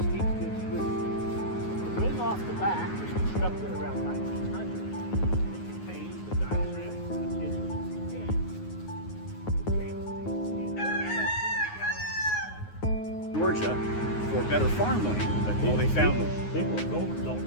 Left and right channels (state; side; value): late; right; 9.5 ms